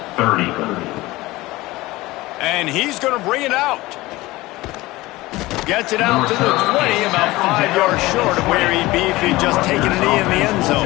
30. And he's going to bring it out. Gets it out to the 20, about 5 yards short of where he'd be if he'd just taken a knee in the end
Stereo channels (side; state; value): right; quieter; 19.4 dB